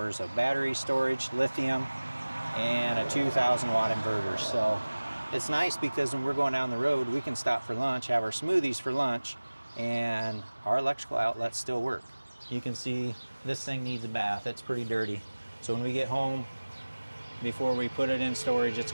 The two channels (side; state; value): both; inverted; correlation -1.00